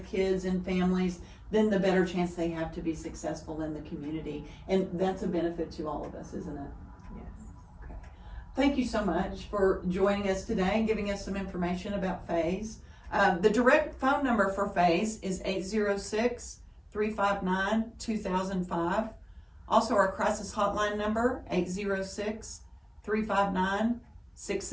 kids and families, then the better chance they have to be successful in the community. And that's a benefit to all of us, isn't it? Yes. Thank you so much for joining us today and giving us some information about FAYS. The direct phone number for FAYS is 806-359-2005. Also, our crisis hotline number,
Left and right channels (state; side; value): identical; both; correlation 1.00